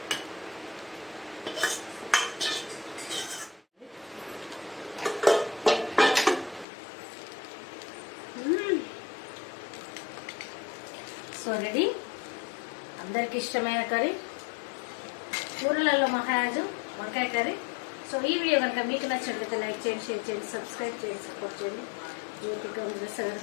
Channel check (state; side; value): drops out; right; at 6.7 s